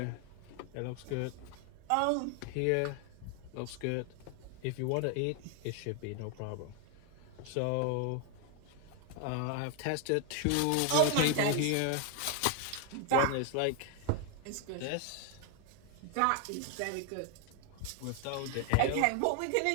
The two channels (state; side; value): different; both; correlation 0.01